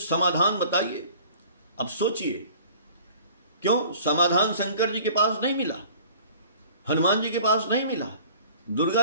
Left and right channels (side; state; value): both; inverted; correlation -0.48